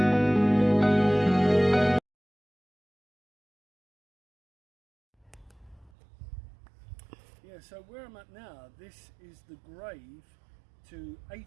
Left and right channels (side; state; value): left; drops out; at 5.9 s